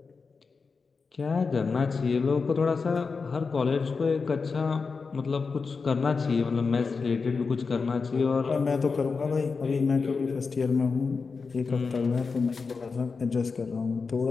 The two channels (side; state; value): right; quieter; 4.8 dB